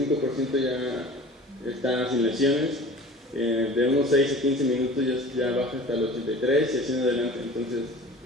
ya está sin lesiones, de unos 6 a 15 minutos ya baja hasta el 83 y así en adelante, entonces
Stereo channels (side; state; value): both; normal; correlation 0.41